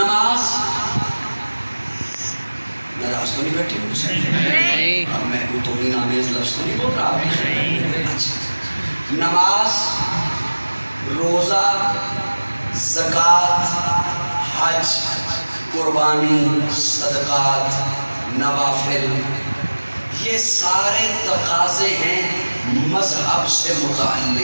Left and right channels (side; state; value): both; inverted; correlation -1.00